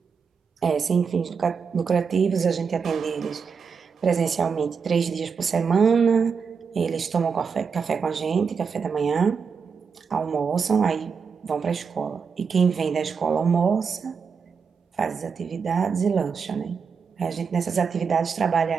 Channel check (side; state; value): left; quieter; 5.9 dB